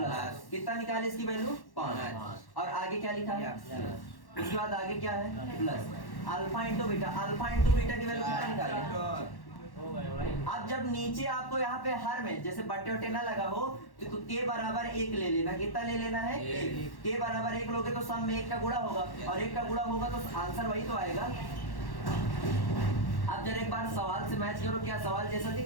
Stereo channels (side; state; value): right; late; 1.1 ms